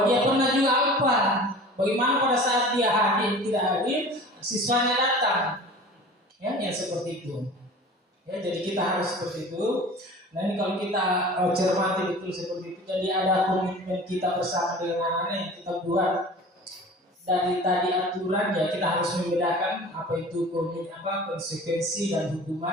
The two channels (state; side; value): normal; both; correlation 0.41